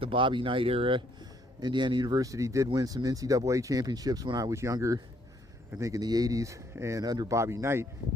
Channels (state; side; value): normal; both; correlation 0.68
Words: Bobby Knight era. Indiana University did win some NCAA championships when I was younger, I think in the 80s, and under Bobby Knight.